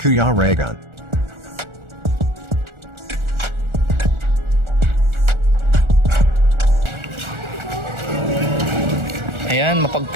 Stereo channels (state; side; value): late; left; 1.4 ms